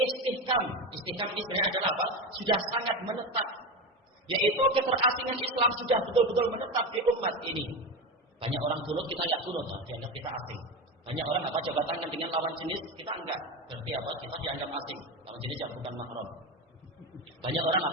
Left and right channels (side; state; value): both; normal; correlation 0.19